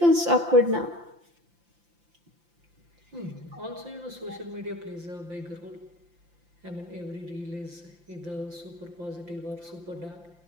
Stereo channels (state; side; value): late; left; 5.8 ms